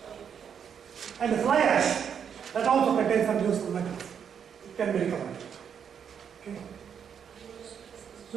And the fly ash, that also contains some useful metals. It can be recovered. Okay.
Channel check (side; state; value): left; quieter; 7.7 dB